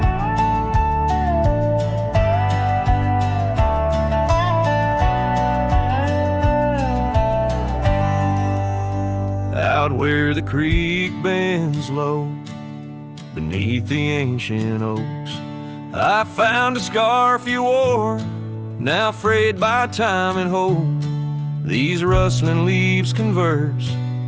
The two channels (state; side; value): identical; both; correlation 1.00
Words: Where the creek bends low beneath the ancient oaks, I found a scarf you wore, now frayed by time and hope. These rustling leaves converse